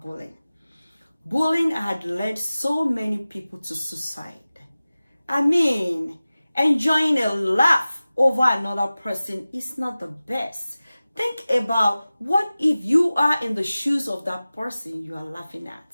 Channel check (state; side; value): inverted; both; correlation -0.97